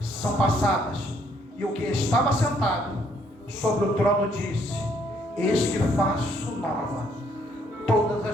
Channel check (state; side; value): normal; both; correlation 0.68